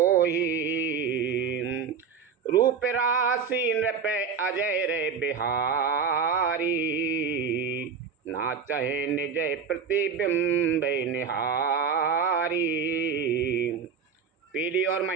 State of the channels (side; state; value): left; quieter; 6.0 dB